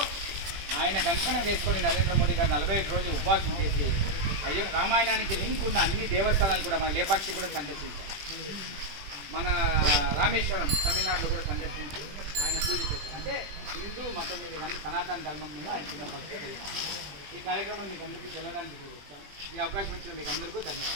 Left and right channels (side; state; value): left; late; 20 ms